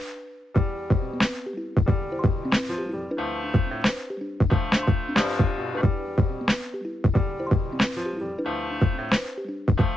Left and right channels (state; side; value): normal; both; correlation 0.87